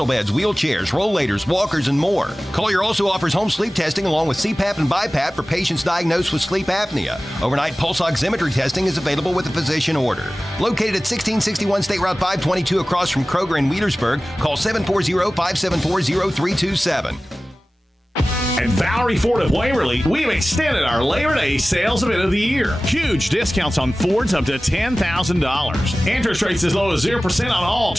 beds, wheelchairs, rollators, walkers, and more. Collier also offers home sleep testing along with CPAP and BiPAP for patients diagnosed with sleep apnea. Overnight pulse oximetry testing is available with a physician order. Located at 1661 State Route 522 across from Kroger in Wheelersburg, call 740-574-0327. At Valerie Ford of Waverly, we've extended our Labor Day sales event of the year. Huge discounts on Fords up to $10,000. Interest rates as low as 0% on all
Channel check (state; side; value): normal; both; correlation 0.97